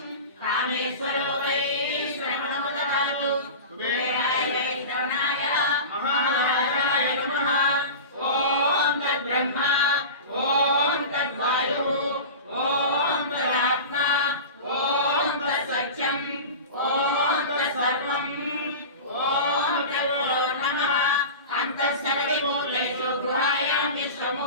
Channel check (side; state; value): both; inverted; correlation -0.30